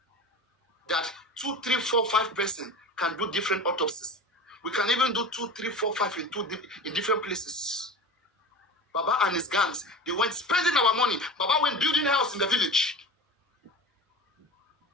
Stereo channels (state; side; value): normal; both; correlation 0.33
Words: that 2, 3, 4, 5 person can do different autopsies. We can even do 2, 3, 4, 5 in different places. Baba and his gangs, they went spending our money. Baba went building a house in the village.